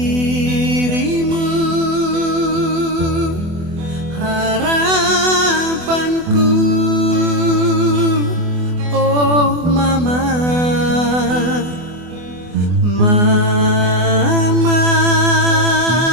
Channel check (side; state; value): left; late; 24 ms